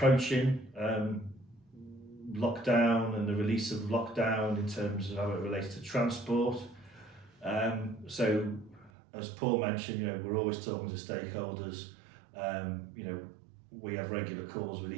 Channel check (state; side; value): drops out; left; at 8.9 s